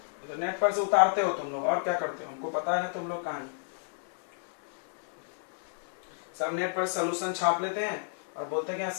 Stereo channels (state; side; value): silent; right; digital silence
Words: तो नेट पर से उतारते हो तुम लोग और क्या करते हो? हमको पता है ना तुम लोग कहां हैं। सब नेट पर सोल्यूशन छाप लेते हैं और बोलते हैं कि